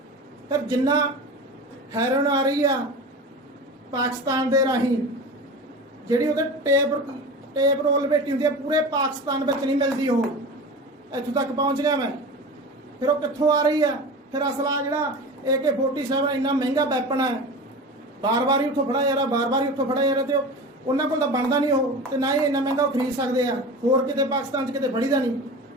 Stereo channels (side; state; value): both; normal; correlation 0.32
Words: ਫਿਰ ਜਿੰਨਾ ਹੈਰੋਇਨ ਆ ਰਹੀ ਆ ਪਾਕਿਸਤਾਨ ਦੇ ਰਾਹੀਂ, ਜਿਹੜੀ ਉਹਦੇ ਟੇਪ ਰੋਲ ਬੇਟੀ ਹੁੰਦੀ ਆ, ਪੂਰੇ ਪਾਕਿਸਤਾਨ ਵਿੱਚ ਨਹੀਂ ਮਿਲਦੀ, ਉਹ ਇੱਥੋਂ ਤੱਕ ਪਹੁੰਚ ਗਿਆ ਮੈਂ। ਫਿਰ ਉਹ ਕਿੱਥੋਂ ਆ ਰਹੀ ਆ? ਫਿਰ ਅਸਲਾ ਜਿਹੜਾ AK-47 ਇੰਨਾ ਮਹਿੰਗਾ ਵੈਪਨ ਹੈ, ਬਾਰ-ਬਾਰ ਹੀ ਉੱਥੋਂ ਫੜਾ ਜਾ ਰਿਹਾ, ਬਾਰ-ਬਾਰ ਹੀ ਉੱਥੋਂ ਫੜਾ ਜਾ ਰਿਹਾ, ਤੇ ਉਹਨਾਂ ਕੋਲ ਤਾਂ ਬਣਦਾ ਨਹੀਂ ਉਹ, ਤੇ ਨਾ ਹੀ ਇੰਨਾ ਮਹਿੰਗਾ ਉਹ ਖਰੀਦ ਸਕਦੇ ਆ। ਹੋਰ ਕਿਤੇ ਪਾਕਿਸਤਾਨ 'ਚ ਕਿਤੇ ਫੜੀਦਾ ਨਹੀਂ।